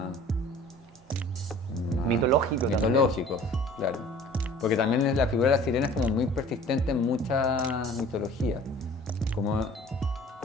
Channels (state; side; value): normal; both; correlation 0.48